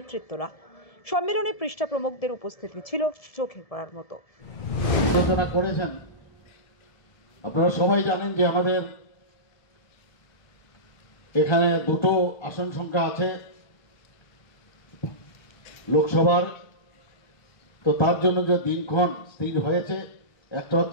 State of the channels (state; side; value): late; right; 1.7 ms